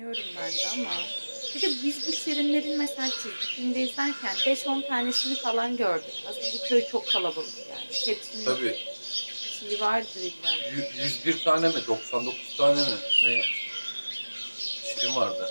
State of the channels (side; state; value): both; inverted; correlation -1.00